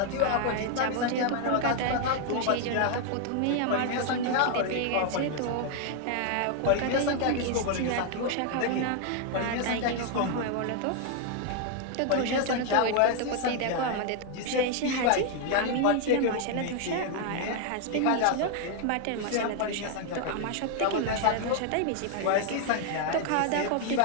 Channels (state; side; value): different; both; correlation 0.00